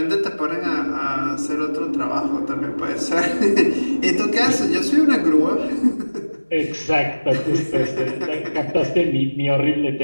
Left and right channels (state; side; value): inverted; both; correlation -1.00